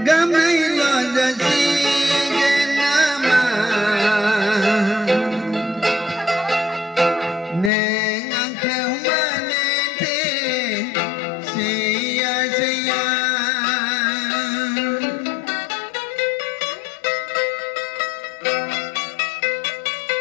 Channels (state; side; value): drops out; right; at 7.7 s